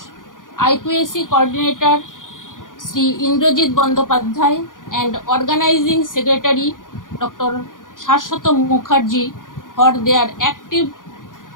IQAC Coordinator, Sri Indrajit Bandopadhyay, and Organizing Secretary, Dr. Saswat Mukherjee, for their active,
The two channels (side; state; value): right; late; 0.89 ms